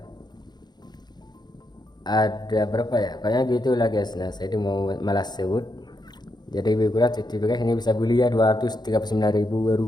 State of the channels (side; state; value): right; late; 0.20 ms